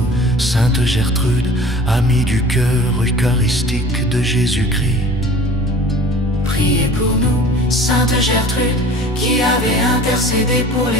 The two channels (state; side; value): normal; both; correlation 0.45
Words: Sainte Gertrude, amie du cœur eucharistique de Jésus-Christ, Priez pour nous. Sainte Gertrude, qui avait intercédé pour